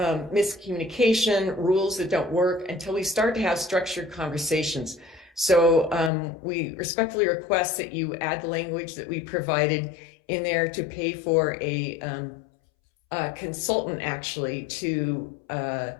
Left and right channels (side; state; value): right; drops out; at 6.1 s